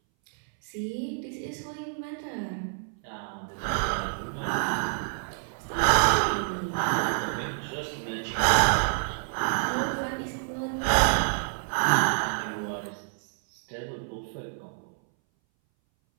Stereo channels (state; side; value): silent; left; 59 dB below the other